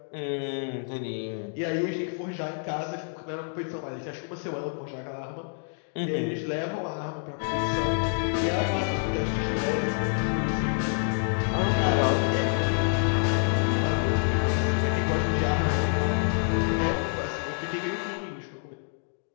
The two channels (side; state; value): right; silent; 58 dB below the other